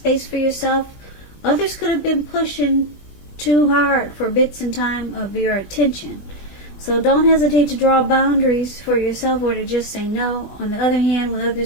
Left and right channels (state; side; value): late; right; 20 ms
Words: for yourself. Others could have been pushing too hard for bits and time of your attention. So don't hesitate to draw boundaries for yourself or to just say no. On the other hand, when